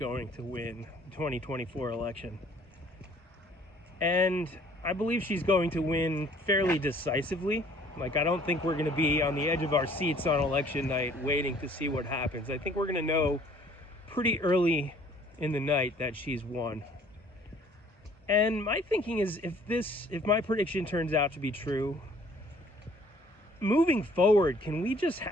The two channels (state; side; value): normal; both; correlation 0.57